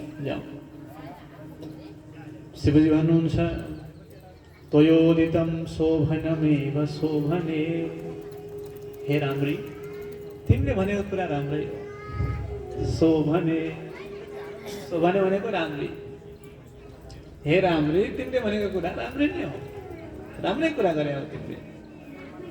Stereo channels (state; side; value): identical; both; correlation 1.00